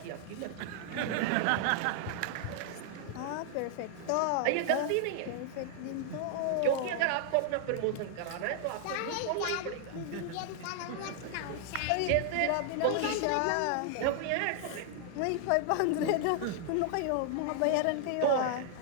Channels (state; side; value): different; both; correlation 0.00